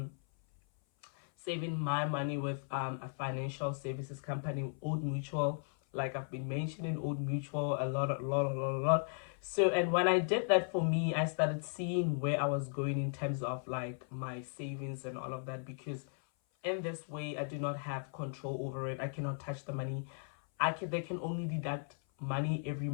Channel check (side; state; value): right; silent; 54 dB below the other